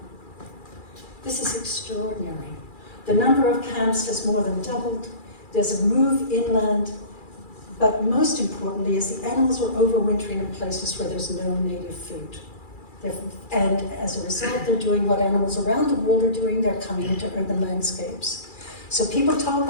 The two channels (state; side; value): late; right; 2.4 ms